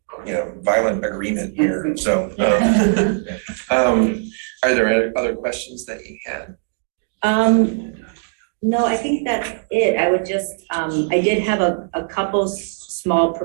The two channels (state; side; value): silent; left; 61 dB below the other